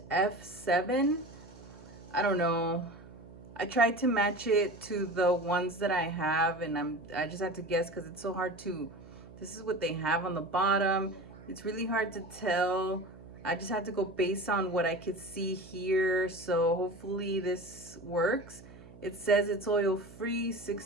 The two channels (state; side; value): noise; right; hum, 19 dB below the sound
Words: F7. I don't know. I tried to match it to the ones that I have, and I just had to guess because it's so hard to. This is what they have on the bottom. It's really hard to tell. I just had to go based on what I could see here, so hopefully this works. It says it's oil free,